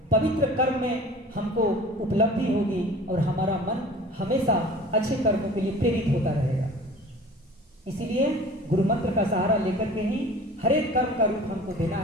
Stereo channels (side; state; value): both; normal; correlation 0.43